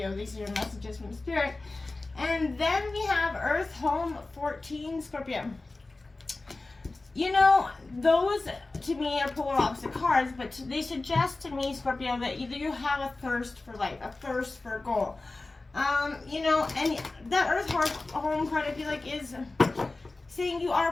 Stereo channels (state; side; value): quieter; right; 3.2 dB